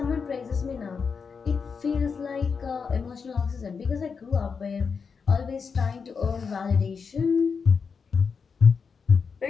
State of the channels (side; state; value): right; quieter; 5.6 dB